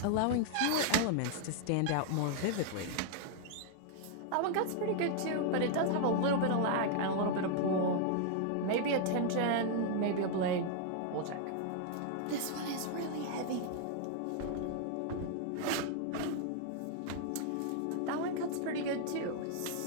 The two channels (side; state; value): both; different; correlation 0.00